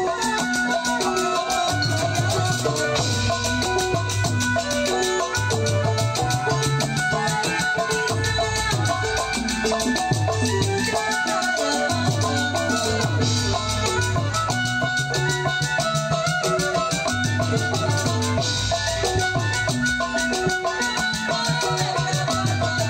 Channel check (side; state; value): both; identical; correlation 1.00